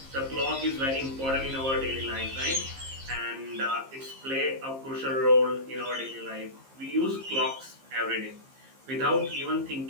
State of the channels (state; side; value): late; left; 15 ms